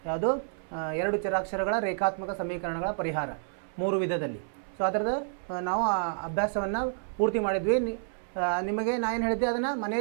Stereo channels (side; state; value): left; silent; 58 dB below the other